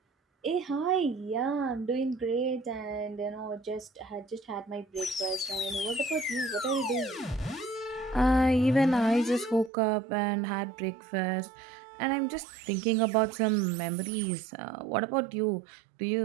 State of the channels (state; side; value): drops out; left; at 9.7 s